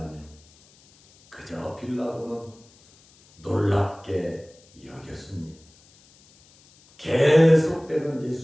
그저 빌라도는 놀랍게 여겼습니다. 계속되는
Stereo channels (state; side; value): noise; left; hiss, 28 dB below the sound